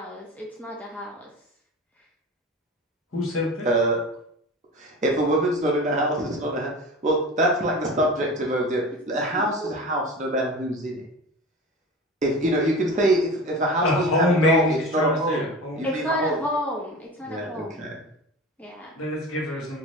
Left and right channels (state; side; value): normal; both; correlation 0.33